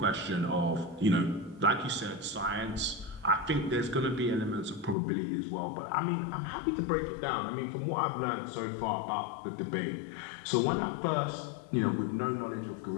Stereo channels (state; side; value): drops out; right; at 5.0 s